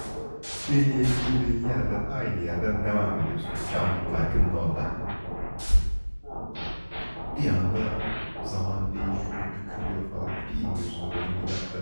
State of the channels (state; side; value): inverted; both; correlation -1.00